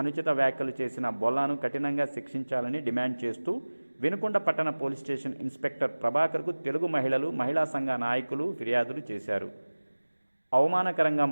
అనుచిత వ్యాఖ్యలు చేసిన బొల్లాను కఠినంగా శిక్షించాలని డిమాండ్ చేస్తూ వినుకొండ పట్టణ పోలీస్ స్టేషన్ ఇన్స్పెక్టర్ ప్రభాకర్కు తెలుగు మహిళలు, మహిళా సంఘ నాయకులు ఫిర్యాదులు చేశారు. అవమానకరంగా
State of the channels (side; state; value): both; inverted; correlation -1.00